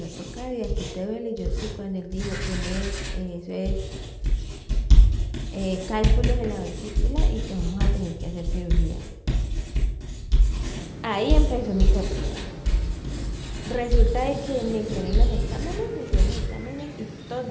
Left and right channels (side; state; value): both; identical; correlation 1.00